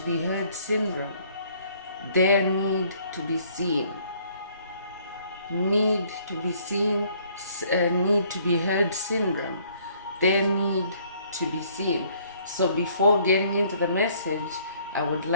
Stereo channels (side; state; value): both; inverted; correlation -0.61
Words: be heard syndrome. Their need to be seen, need to be seen, need to be heard syndrome. Their need to be seen. So before getting into the message, I would